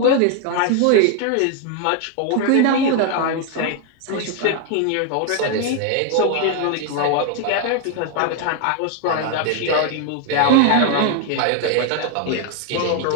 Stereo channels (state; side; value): different; both; correlation 0.01